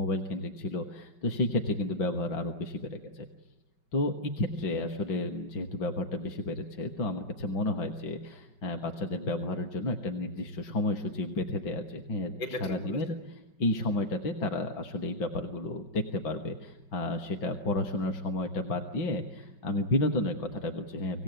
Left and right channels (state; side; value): late; right; 5.3 ms